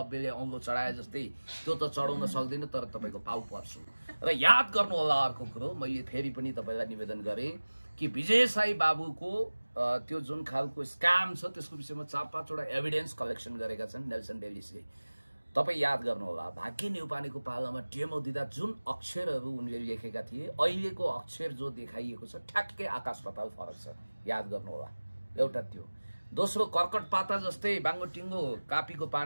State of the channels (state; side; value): inverted; both; correlation -1.00